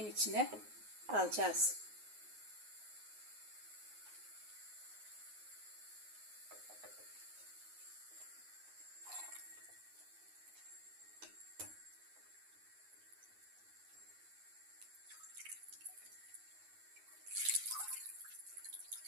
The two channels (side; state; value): left; late; 9.5 ms